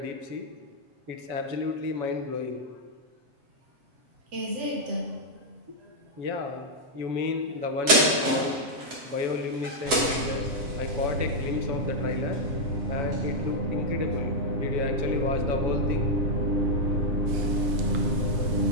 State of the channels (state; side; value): late; left; 7.7 ms